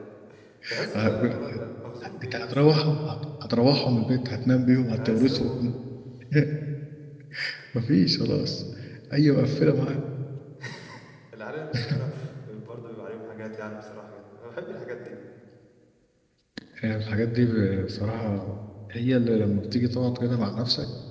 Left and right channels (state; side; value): identical; both; correlation 1.00